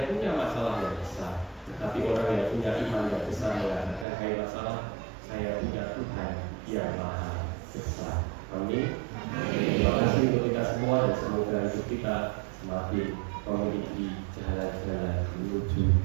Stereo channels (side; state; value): left; drops out; at 4.0 s